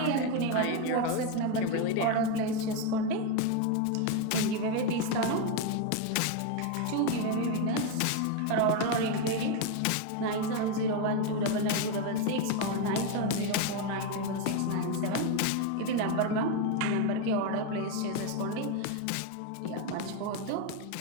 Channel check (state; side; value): different; both; correlation 0.02